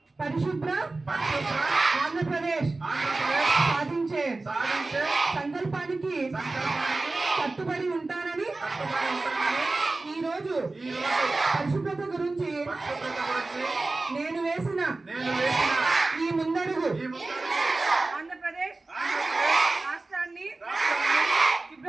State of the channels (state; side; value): quieter; left; 3.3 dB